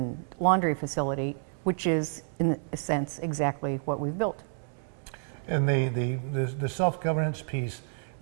laundry facility, which is, in a sense, exactly what we've built. And the self-governance piece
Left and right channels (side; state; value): left; silent; digital silence